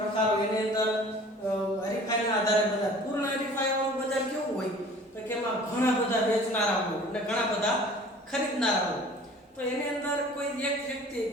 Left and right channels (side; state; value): both; normal; correlation 0.47